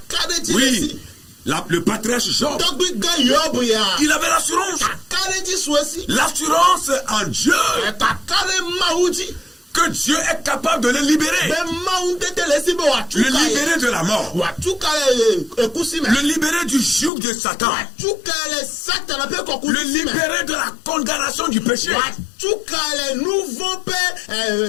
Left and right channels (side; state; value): right; drops out; at 17.1 s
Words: Oui. Le patriarche Job, il avait l'assurance. L'assurance en Dieu. Que Dieu est capable de le libérer. Le libérer de la mort. Le libérer du joug de Satan. Le libérer de la condamnation du péché.